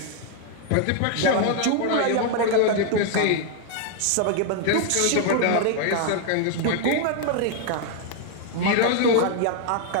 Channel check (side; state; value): both; different; correlation 0.00